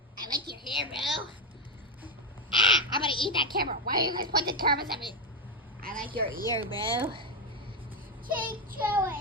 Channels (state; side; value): normal; both; correlation 0.09